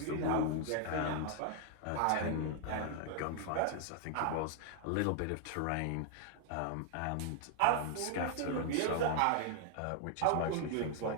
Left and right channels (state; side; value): different; both; correlation 0.00